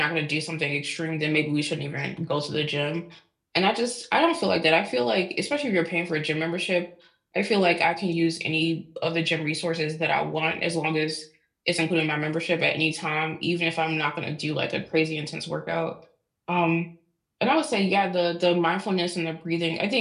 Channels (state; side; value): identical; both; correlation 1.00